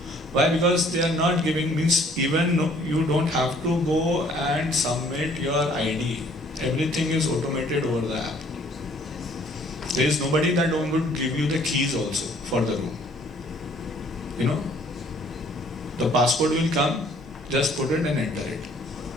Why? Because they are not giving, means even you don't have to go and submit your ID. Everything is automated over the app. There is nobody that would give you the keys also for the room. You know, the passport will come, just put it and enter it.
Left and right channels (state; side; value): normal; both; correlation 0.59